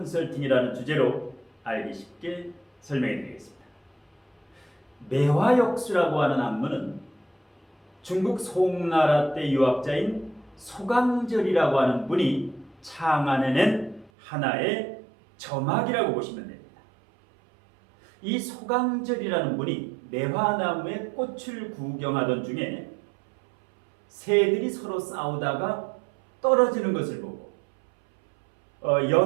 주제로 알기 쉽게 설명해 드리겠습니다. 매화역수라고 하는 학문은 중국 송나라 때 유학자인 소강절이라고 하는 분이 창안해낸 하나의 점학이라고 보시면 됩니다. 이 소강절이라는 분이 매화나무의 꽃을 구경하던 중에 새들이 서로 싸우다가 떨어지는 것을 보고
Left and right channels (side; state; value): left; drops out; at 14.1 s